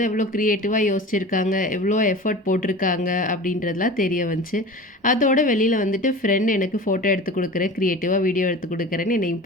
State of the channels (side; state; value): both; normal; correlation 0.35